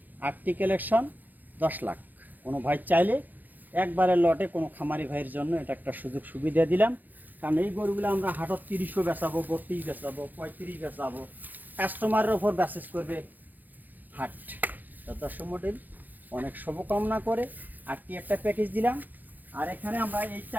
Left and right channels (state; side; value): late; left; 0.085 ms